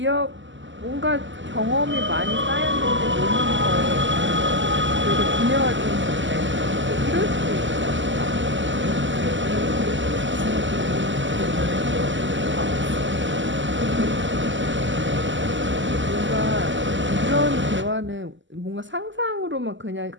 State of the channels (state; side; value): late; left; 0.54 ms